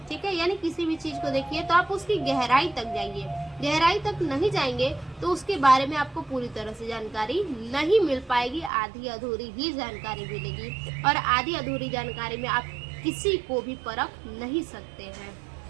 ठीक है, यानी किसी भी चीज को देखिए तो आप उसकी गहराई तक जाइए, गहराई तक नहीं जाएंगे तो उसके बारे में आपको पूरी तरह से जानकारी नहीं मिल पाएगी, आधी अधूरी ही जानकारी मिलेगी। और आधी अधूरी जानकारी में आप किसी को भी परख नहीं सकते हैं।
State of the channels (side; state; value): left; drops out; at 8.7 s